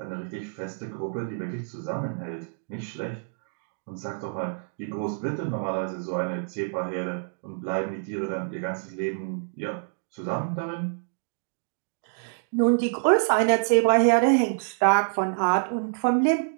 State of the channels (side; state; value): left; silent; digital silence